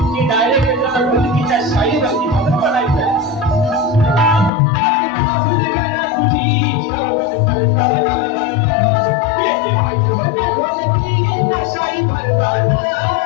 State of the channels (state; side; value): drops out; right; at 4.5 s